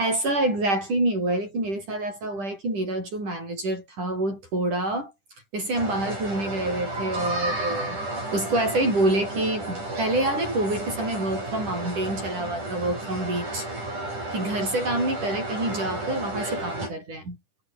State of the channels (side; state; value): left; late; 10 ms